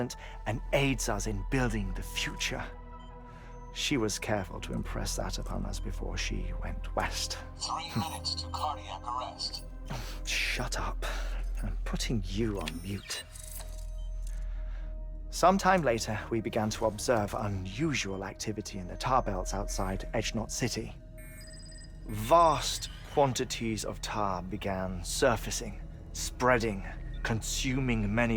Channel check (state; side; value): identical; both; correlation 1.00